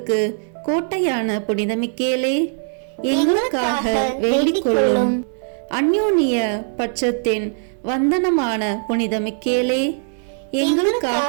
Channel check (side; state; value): left; silent; digital silence